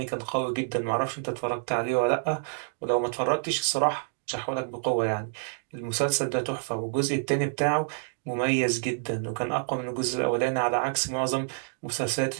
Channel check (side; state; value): left; silent; digital silence